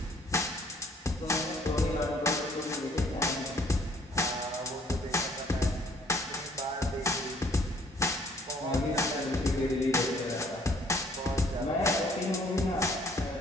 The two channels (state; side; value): normal; both; correlation 0.61